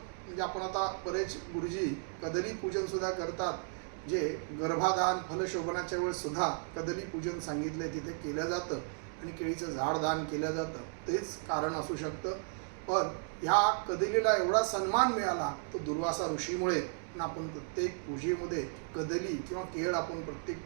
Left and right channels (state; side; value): silent; left; 55 dB below the other